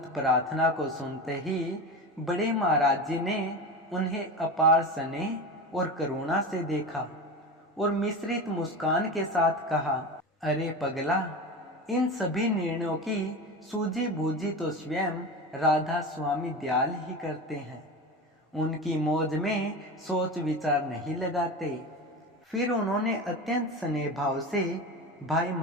प्रार्थना को सुनते ही बड़े महाराज जी ने उन्हें अपार स्नेह और करुणा से देखा और मिश्रित मुस्कान के साथ कहा, अरे पगला, इन सभी निर्णयों की सूझी बूझी तो स्वयं राधा स्वामी दयाल ही करते हैं, उनकी मौज में सोच विचार नहीं लगाते। फिर उन्होंने अत्यंत स्नेह भाव से भाई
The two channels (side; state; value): both; normal; correlation 0.26